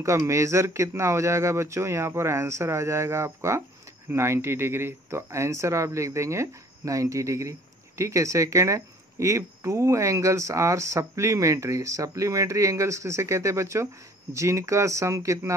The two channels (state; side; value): normal; both; correlation 0.54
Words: मेजर कितना हो जाएगा बच्चों, यहाँ पर आंसर आ जाएगा आपका 90 डिग्री। तो आंसर आप लिख देंगे 90 डिग्री, ठीक है। सेकेंड है, if two angles are supplementary, supplementary angles किसे कहते हैं बच्चों, जिनका सम कितना